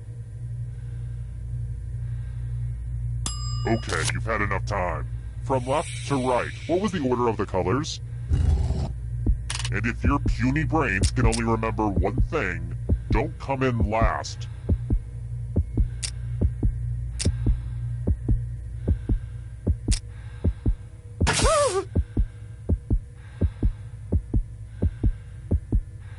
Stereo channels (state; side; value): identical; both; correlation 1.00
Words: Okay, you've had enough time. From left to right, what was the order of the colors? And if your puny brains can only remember one thing, don't come in last.